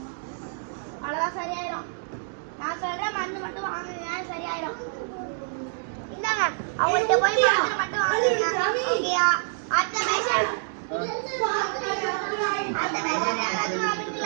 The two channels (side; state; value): left; silent; digital silence